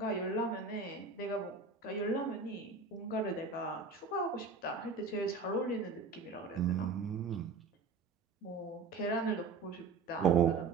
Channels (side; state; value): left; quieter; 4.4 dB